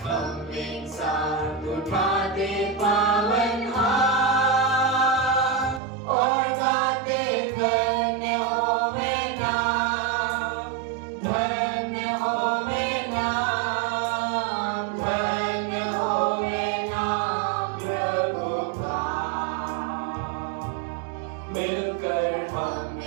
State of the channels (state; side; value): drops out; left; at 5.8 s